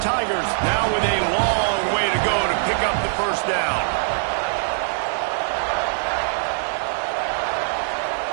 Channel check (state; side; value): silent; left; digital silence